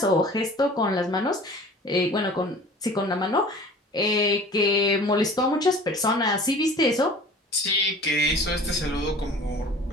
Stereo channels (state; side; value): normal; both; correlation 0.44